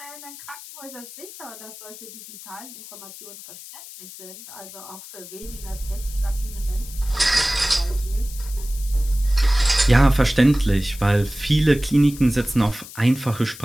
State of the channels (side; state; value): left; noise; hiss, 15 dB below the sound